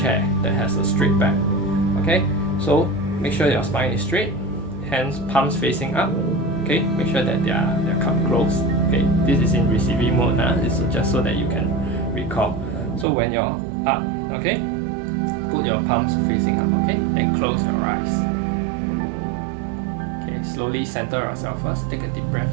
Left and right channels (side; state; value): left; drops out; at 13.1 s